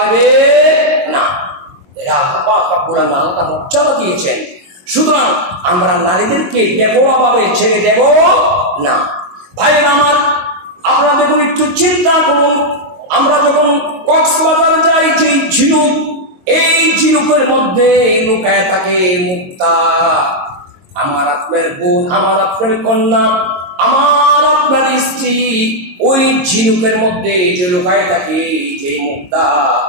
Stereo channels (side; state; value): left; late; 22 ms